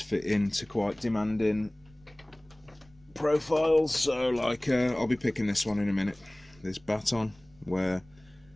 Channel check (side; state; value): right; noise; rumble, 28 dB below the sound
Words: fit into quite demanding profiles. So like I'll be picking this one in a minute, this baton, where